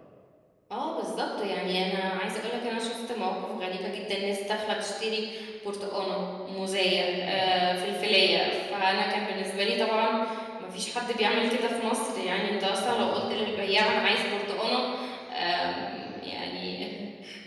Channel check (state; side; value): identical; both; correlation 1.00